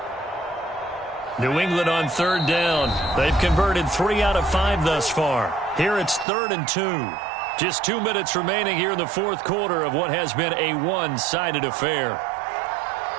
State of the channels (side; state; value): left; drops out; at 6.2 s